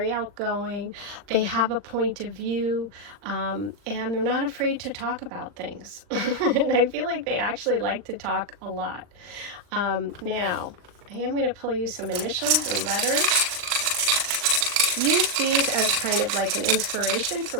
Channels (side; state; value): left; late; 39 ms